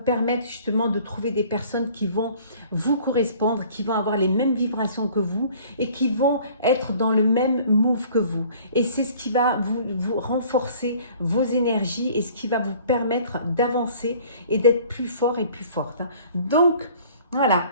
justement de trouver des personnes qui vont vous correspondre, qui vont avoir les mêmes vibrations que vous et qui vont être dans le même move que vous. Et c'est ce qui va vous renforcer vos énergies et ce qui va vous permettre d'avancer et d'être plus fort et plus forte. Hein. Donc, voilà,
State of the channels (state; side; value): inverted; both; correlation -0.51